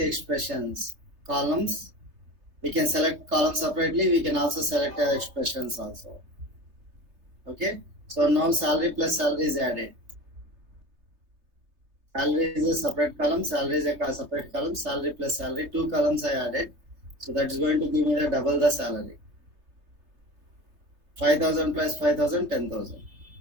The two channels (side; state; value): left; late; 3.2 ms